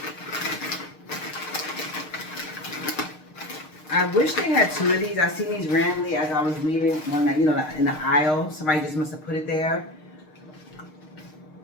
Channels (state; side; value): late; right; 6.5 ms